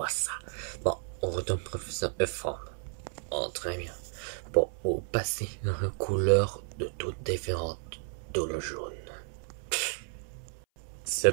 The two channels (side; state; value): left; silent; 56 dB below the other